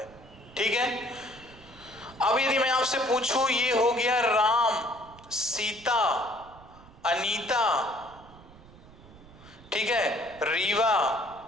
ठीक है। अब यदि मैं आपसे पूछूं, ये हो गया राम, सीता, अनीता, ठीक है, रीवा,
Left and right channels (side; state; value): right; noise; rumble, 22 dB below the sound